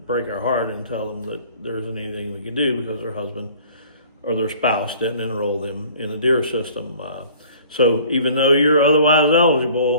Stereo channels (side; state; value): both; inverted; correlation -0.51